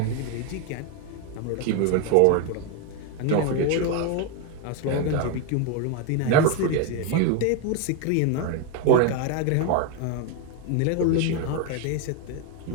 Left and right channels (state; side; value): different; both; correlation 0.01